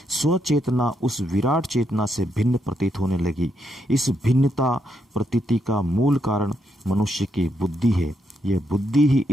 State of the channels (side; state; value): both; normal; correlation 0.78